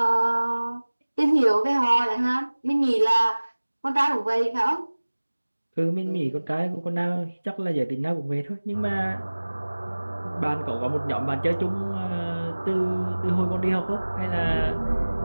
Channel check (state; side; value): inverted; both; correlation -1.00